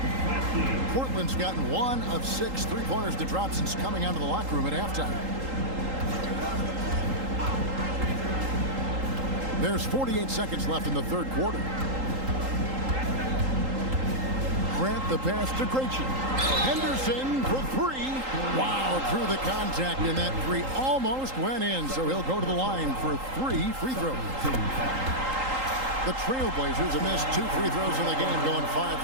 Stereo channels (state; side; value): late; left; 3.8 ms